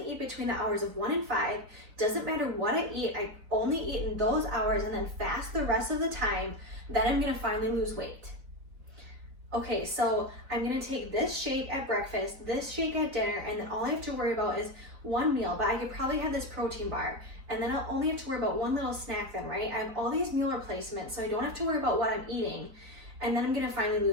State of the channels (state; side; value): late; left; 4.0 ms